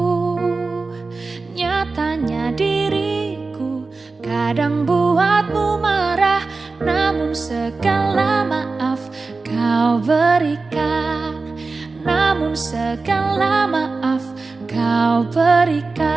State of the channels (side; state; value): left; quieter; 3.9 dB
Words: Nyatanya diriku kadang buatmu marah, namun segala maaf kau berikan. Namun segala maaf kau